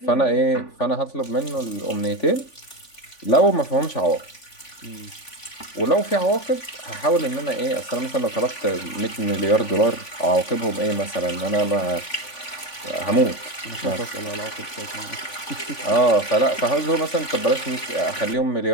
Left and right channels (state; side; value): late; right; 3.5 ms